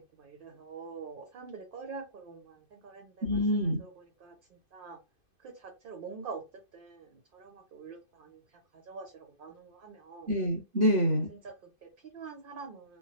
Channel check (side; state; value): left; late; 2.5 ms